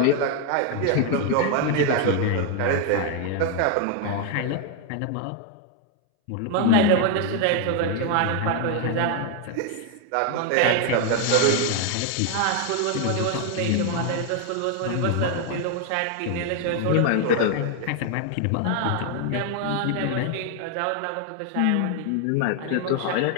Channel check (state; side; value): different; both; correlation 0.00